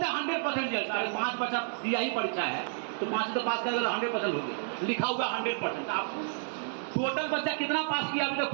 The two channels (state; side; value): silent; left; digital silence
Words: है 100% रिजल्ट। 5 बच्चा दिया ही परीक्षा है तो 5 से तो पास करेगा, 100% हो गया, लिखा हुआ 100%। आप टोटल बच्चा कितना पास किया अभी तक